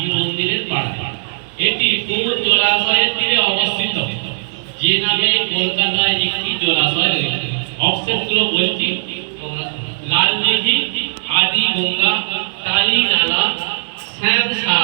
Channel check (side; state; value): left; silent; digital silence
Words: মন্দিরের পাড়ায়। এটি কোন জলাশয়ের তীরে অবস্থিত, যে নামে কলকাতায় একটি জলাশয় রয়েছে? অপশনগুলো বলছি, লাল দিঘি, আদি গঙ্গা, কালী নালা,